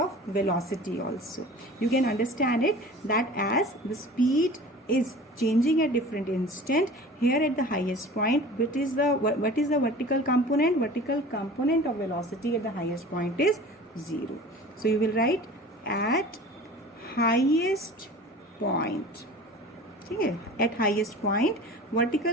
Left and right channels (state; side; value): normal; both; correlation 0.40